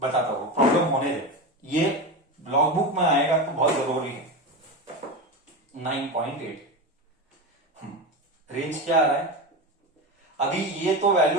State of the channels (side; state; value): both; normal; correlation 0.21